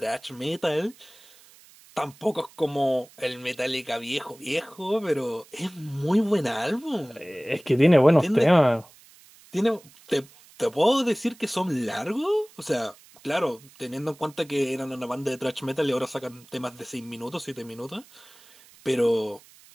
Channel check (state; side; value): noise; right; hiss, 25 dB below the sound